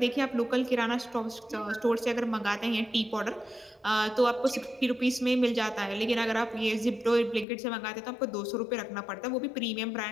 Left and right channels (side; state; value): right; drops out; at 7.5 s